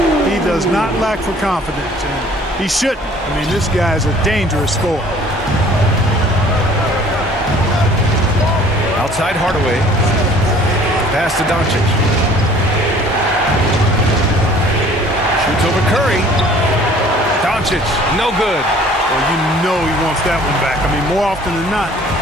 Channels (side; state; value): both; normal; correlation 0.53